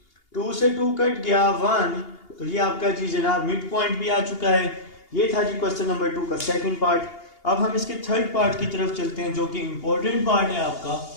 2 से 2 कट गया 1। तो ये आपका जी जनाब मिड पॉइंट भी आ चुका है। ये था जी क्वेश्चन नंबर 2 का सेकंड पार्ट। अब हम इसके थर्ड पार्ट की तरफ चलते हैं जो कि इंपॉर्टेंट पार्ट है आपका।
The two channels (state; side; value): late; right; 2.8 ms